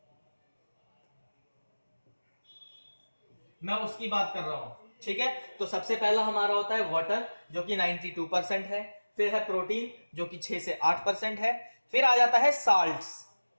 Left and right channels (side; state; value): both; inverted; correlation -1.00